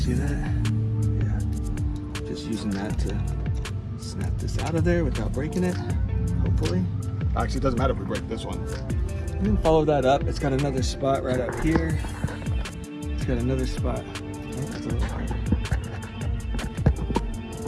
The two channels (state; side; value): identical; both; correlation 1.00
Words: that? Yeah. Just using that to snap this out of there without breaking it, hopefully. Actually, it doesn't matter if we break this one. And then follow that up. It's got another spot right up here. It's got another spot. Oh, that's a little harder.